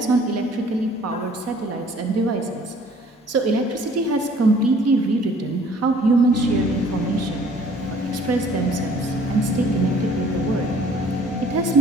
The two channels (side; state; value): both; normal; correlation 0.55